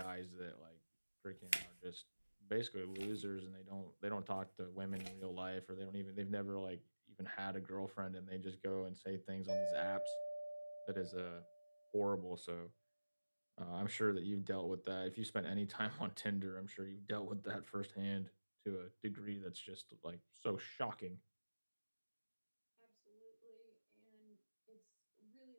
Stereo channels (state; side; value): inverted; both; correlation -1.00